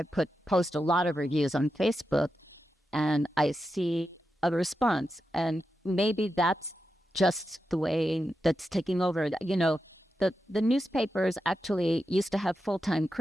post a lot of reviews on Facebook and I see a response, and maybe that's just the way that's taking over. the newspapers actually used to have full-time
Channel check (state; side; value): normal; both; correlation 0.88